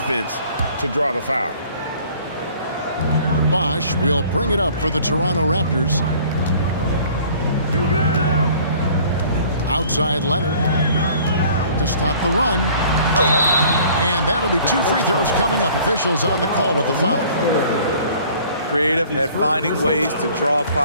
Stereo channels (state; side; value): inverted; both; correlation -0.52